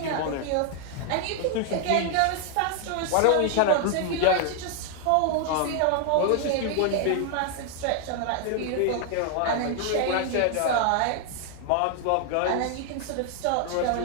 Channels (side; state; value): both; different; correlation 0.00